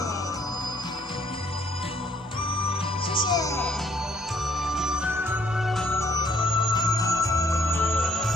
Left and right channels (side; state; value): both; normal; correlation 0.66